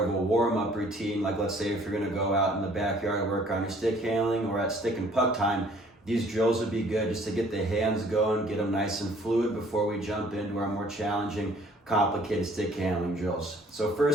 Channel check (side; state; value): both; normal; correlation 0.57